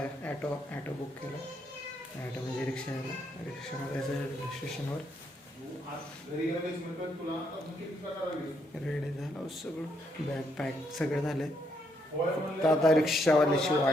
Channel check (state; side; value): normal; both; correlation 0.75